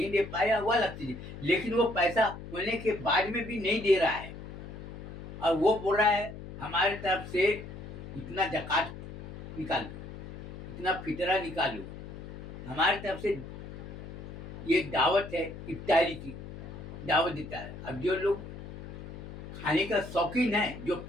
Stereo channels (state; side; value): noise; left; hum, 11 dB below the sound